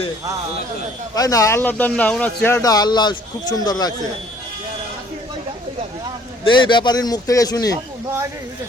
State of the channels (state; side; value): normal; both; correlation 0.58